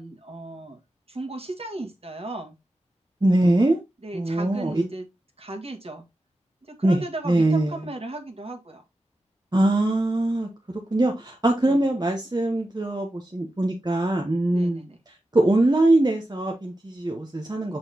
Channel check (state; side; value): normal; both; correlation 0.91